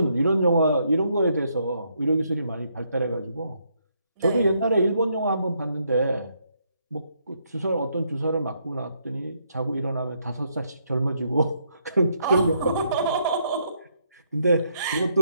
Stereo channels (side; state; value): both; inverted; correlation -0.74